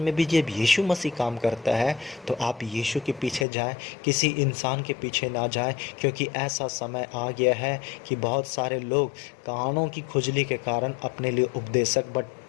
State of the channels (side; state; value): right; drops out; at 3.5 s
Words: भी जब यीशु मसीह काम करता है तो आप यीशु के पीछे जाएं, किसी इंसान के पीछे ना जाएं, क्योंकि ऐसा समय आ गया है कि बहुत सारे लोग कानों की खुजली के कारण अपने लिए उपदेशक